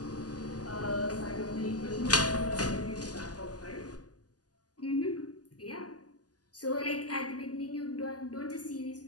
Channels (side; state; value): right; late; 0.68 ms